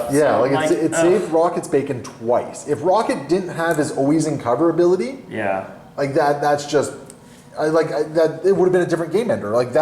Yeah, so it saved Rocket's bacon twice. If Rocket didn't have his always in cover ability, yeah, like that's just. That it would have been a different game ender. Like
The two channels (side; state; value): both; identical; correlation 1.00